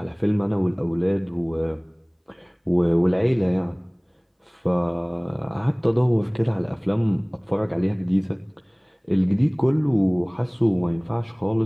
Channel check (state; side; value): identical; both; correlation 1.00